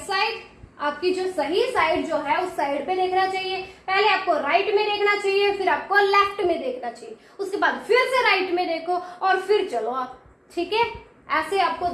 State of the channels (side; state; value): both; identical; correlation 1.00